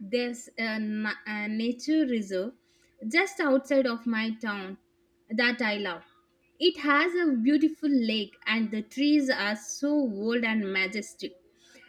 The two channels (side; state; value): both; identical; correlation 1.00